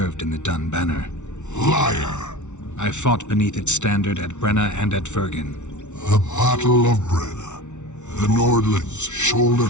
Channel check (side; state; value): right; late; 0.83 ms